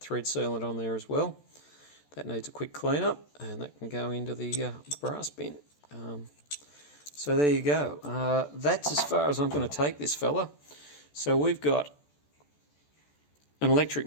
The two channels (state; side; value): late; right; 14 ms